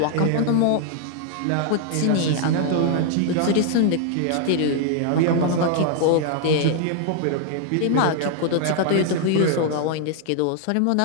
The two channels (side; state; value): both; different; correlation 0.00